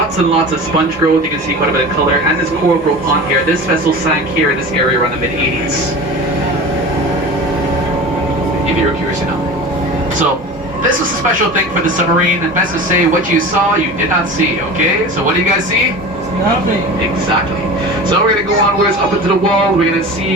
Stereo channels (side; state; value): both; normal; correlation 0.34